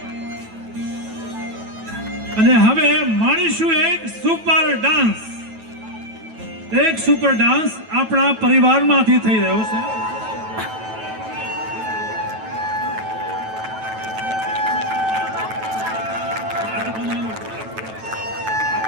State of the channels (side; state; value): left; late; 9.1 ms